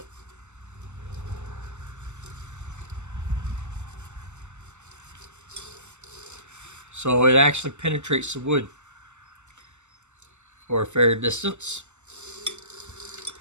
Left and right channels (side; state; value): left; late; 0.83 ms